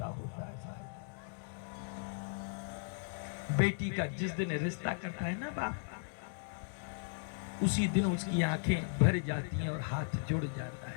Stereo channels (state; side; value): silent; right; digital silence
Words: होता है साहब। बेटी का जिस दिन रिश्ता करता है ना बाप, उसी दिन उसकी आंखें भर जाती हैं और हाथ जुड़ जाता है।